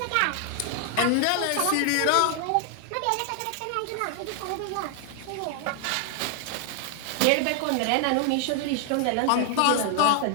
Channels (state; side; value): different; both; correlation 0.00